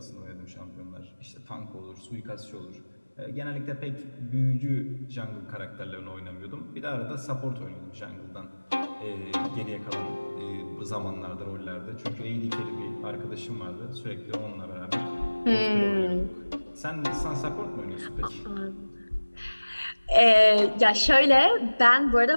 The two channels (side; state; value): both; inverted; correlation -1.00